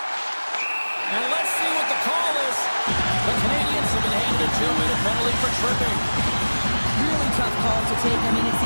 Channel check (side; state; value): both; inverted; correlation -1.00